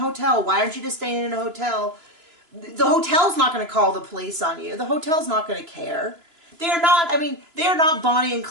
Why aren't you just staying in a hotel? The hotel's not going to call the police on you. The hotel's not going to care. They are not, I mean, they are not Bonnie and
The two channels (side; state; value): left; late; 3.0 ms